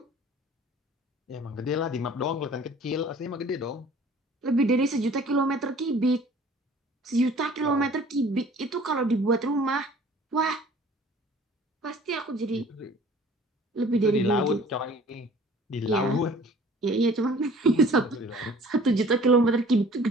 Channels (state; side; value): normal; both; correlation 0.50